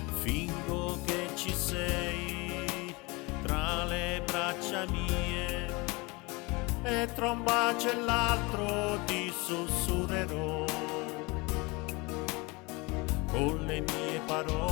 Fingo che ci sei tra le braccia mie, e tra un bacio e l'altro ti sussurrerò con le mie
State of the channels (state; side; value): quieter; right; 25.8 dB